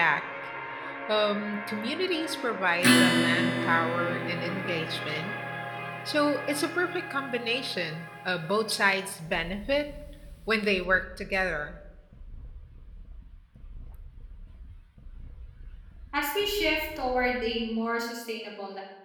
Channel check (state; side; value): identical; both; correlation 1.00